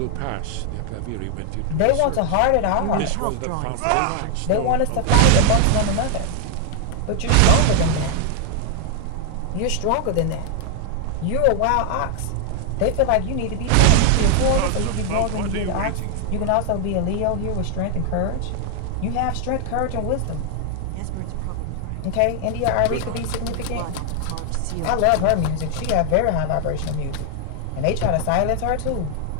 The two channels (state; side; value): different; both; correlation 0.00